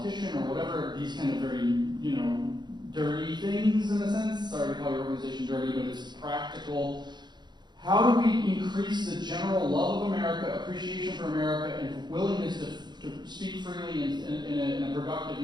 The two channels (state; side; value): late; left; 0.21 ms